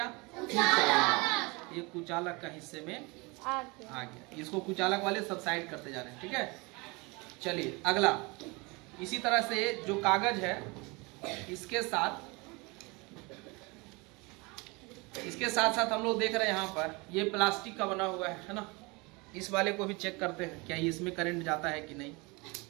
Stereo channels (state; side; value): quieter; left; 26.9 dB